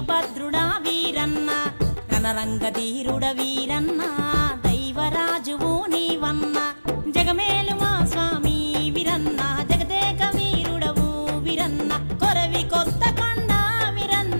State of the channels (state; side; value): inverted; both; correlation -1.00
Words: వీరన్న రణరంగధీరుడ వీరన్న దైవరాజువు నీవన్న జగమేలు మా స్వామి వీరన్న జగదేక వీరుడవు వీరన్న కొరవి కొత్త కొండ